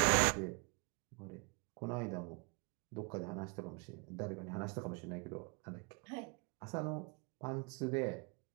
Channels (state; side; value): quieter; left; 33.7 dB